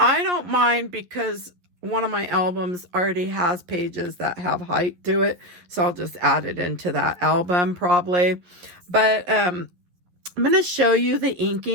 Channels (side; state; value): left; late; 12 ms